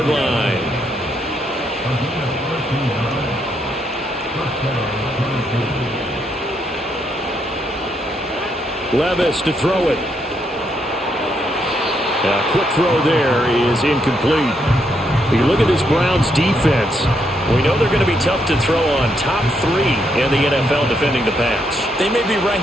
line. Levis to throw it. A quick throw there is incomplete. You look at this Browns defense. We know they're going to be tough to throw on. Top 3 in the NFL defending the pass. They may be ranked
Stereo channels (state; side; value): normal; both; correlation 0.76